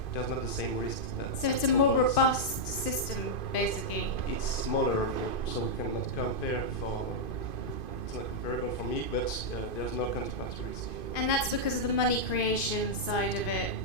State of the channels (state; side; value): late; right; 2.5 ms